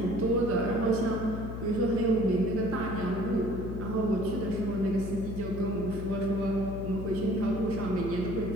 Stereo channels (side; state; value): left; noise; hum, 6 dB below the sound